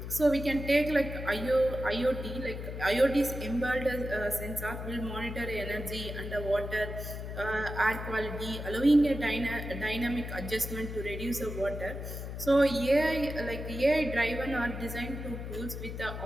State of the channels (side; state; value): left; noise; hum, 7 dB below the sound